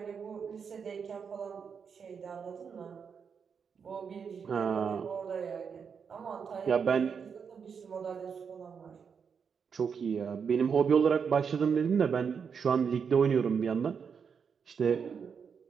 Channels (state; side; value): quieter; left; 6.5 dB